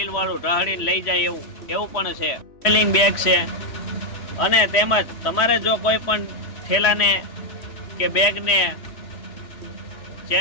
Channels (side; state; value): right; late; 3.1 ms